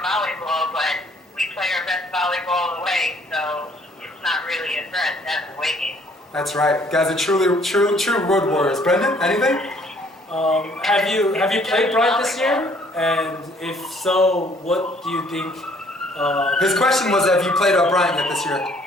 volleyball, but we play our best volleyball away, so it's not really a threat. That's the way game. That's right. Guys are true road warriors. Brendan, anything? Have you played Bryant this year? And if so, what do you think? His question was, have you played Bryant yet this year? What'd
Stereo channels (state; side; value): normal; both; correlation 0.61